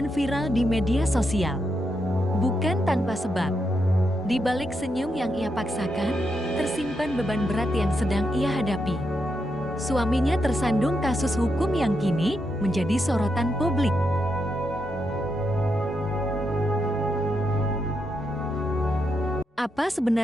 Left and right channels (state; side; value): normal; both; correlation 0.83